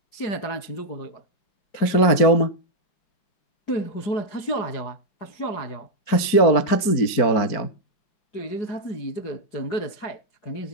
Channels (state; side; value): late; right; 4.5 ms